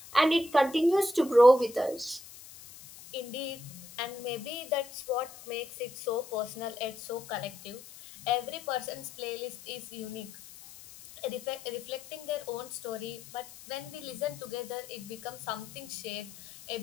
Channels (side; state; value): left; noise; hiss, 17 dB below the sound